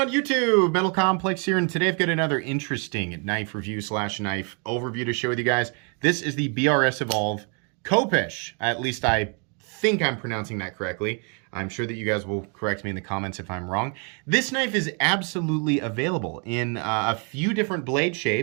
YouTube? Metal Complex here, and today I've got another interesting knife review slash knife overview to share with you guys. This is the BRS Evolve Khopesh. At least I think I'm pronouncing that correctly. I'm sure that you guys will correct me in the comments if I'm wrong. This knife is absolutely available in a few different blade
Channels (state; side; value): quieter; left; 37.5 dB